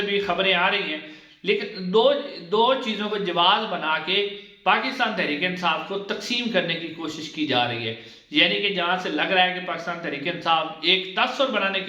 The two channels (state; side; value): identical; both; correlation 1.00